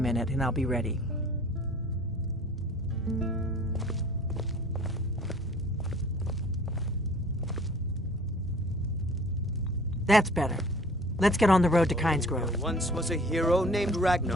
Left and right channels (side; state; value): both; normal; correlation 0.50